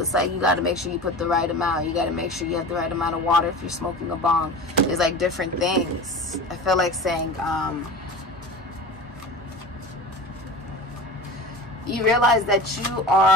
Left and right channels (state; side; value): normal; both; correlation 0.33